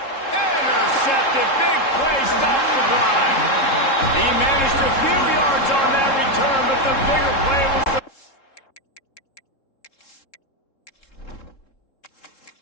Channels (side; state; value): right; late; 3.7 ms